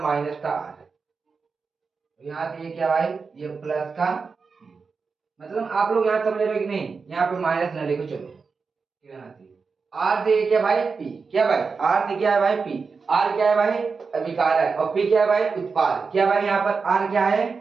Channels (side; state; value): left; quieter; 4.9 dB